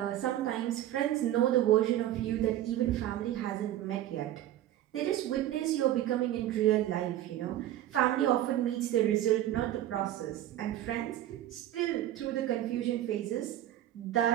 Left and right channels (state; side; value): quieter; left; 13.0 dB